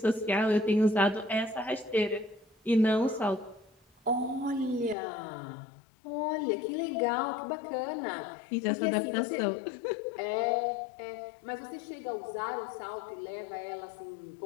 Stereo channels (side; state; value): right; drops out; at 5.0 s